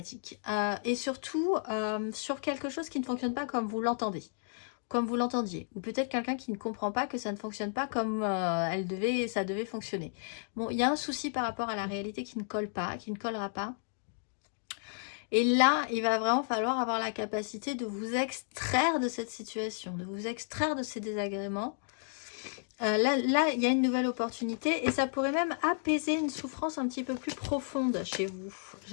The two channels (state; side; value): silent; right; digital silence